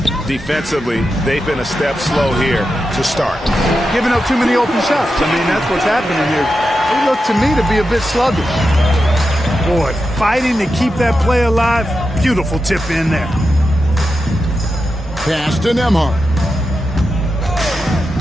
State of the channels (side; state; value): both; normal; correlation 0.89